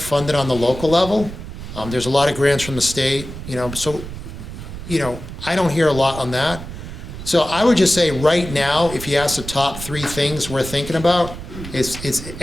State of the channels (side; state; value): right; noise; rumble, 10 dB below the sound